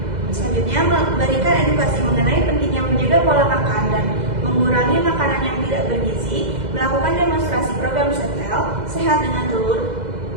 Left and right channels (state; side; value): late; left; 2.0 ms